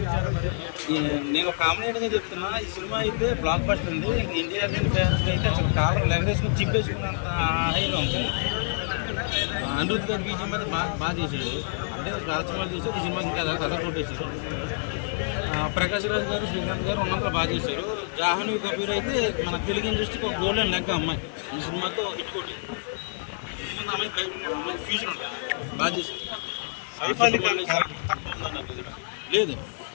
నేను కామెడీగా చెప్తున్నా, ఈ సినిమా అయితే బ్లాక్ బస్టర్ అండి. ఎన్టీఆర్ గారి ఫ్యాన్స్ అయితే అసలు కాలర్ లెగరేసుకుని చింపేసుకున్నంత హైలో ఉంటుంది. అనిరుద్ధ్ గారి బీజం మీద బాగా చేశాడు. అంటే చాలా సినిమాలు చేశాడు, ఈ సినిమాకి ఇంకా కథ కొట్టేశారు. ప్రకాష్ రాజ్ గారు, శ్రీకాంత్ గారు ఉన్నంతలో బాగా చేశారు. జాహ్నవి కపూర్ అయితే మన తెలుగు ఇండస్ట్రీకి ఒక గోల్డెన్ లెక్క అమ్మాయి. ఈ సినిమాతో హిట్ కొట్టింది. అమ్మాయి ఫ్యూచర్ ఉంటుంది, బాగా చేసింది. లేదు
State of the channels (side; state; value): right; silent; digital silence